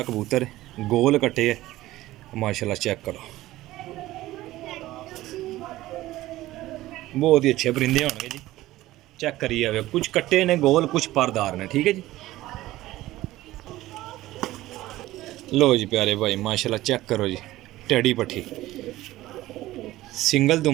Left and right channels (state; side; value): quieter; left; 16.4 dB